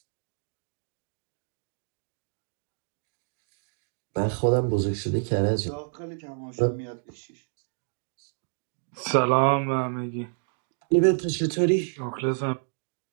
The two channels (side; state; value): left; silent; digital silence